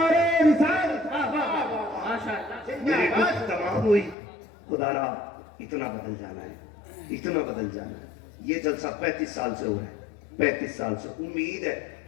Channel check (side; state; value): right; drops out; at 4.2 s